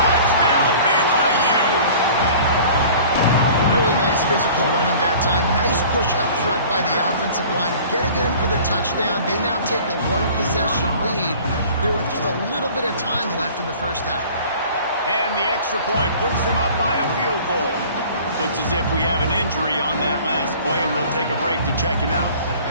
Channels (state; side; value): inverted; both; correlation -0.46